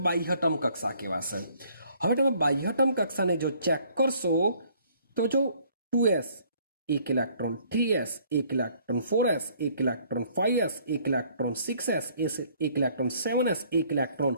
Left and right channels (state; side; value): inverted; both; correlation -0.61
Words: બાહ્યતમ કક્ષા કહેવાશે. હવે તમે બાહ્યતમ કક્ષાને જો ચેક કરશો તો જો 2s 1 electron, 3s 1 electron, 4s 1 electron, 5s 1 electron, 6s 1 electron, 7s 1 electron.